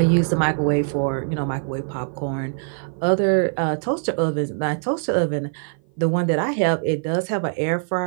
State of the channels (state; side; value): silent; left; 56 dB below the other